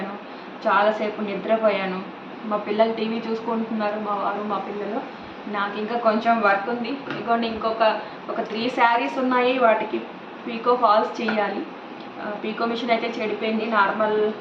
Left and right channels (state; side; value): identical; both; correlation 1.00